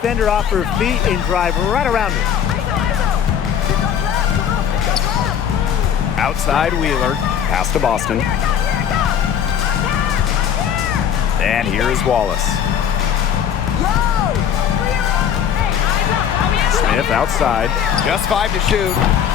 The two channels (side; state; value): right; quieter; 8.7 dB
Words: off her feet and drive right around her. Outside Wheeler. Pass to Boston. And here is Wallace. Smith outside. Just 5 to shoot.